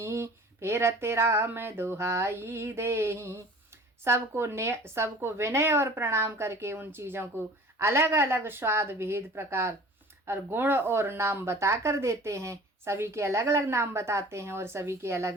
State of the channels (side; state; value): both; normal; correlation 0.44